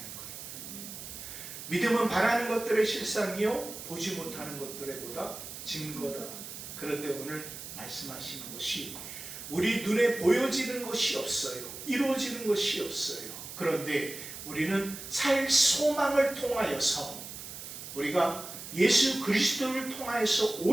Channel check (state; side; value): noise; right; hiss, 11 dB below the sound